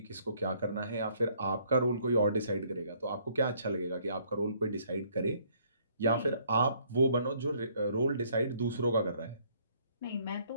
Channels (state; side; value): inverted; both; correlation -0.65